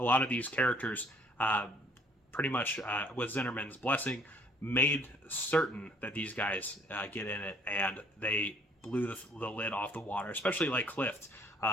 lot of these characters, pretty much with Zinnerman's blessing, made certain that these guys get in it, and they blew the lid off the water, especially like Clift,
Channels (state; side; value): normal; both; correlation 0.60